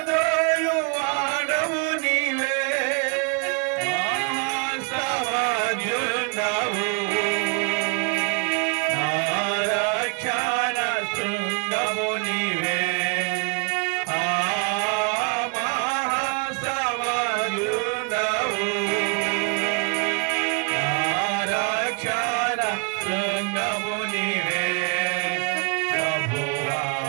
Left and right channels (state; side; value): quieter; left; 34.9 dB